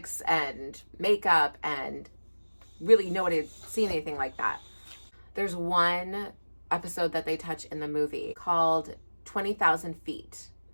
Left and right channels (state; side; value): inverted; both; correlation -1.00